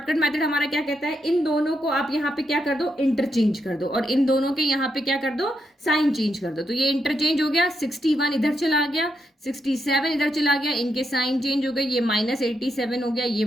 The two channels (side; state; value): both; normal; correlation 0.81